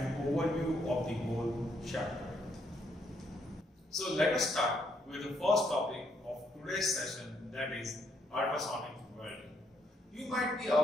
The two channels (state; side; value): normal; both; correlation 0.73